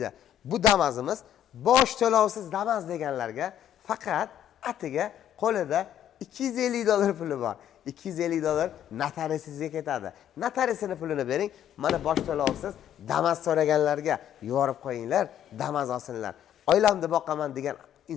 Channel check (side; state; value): right; quieter; 10.4 dB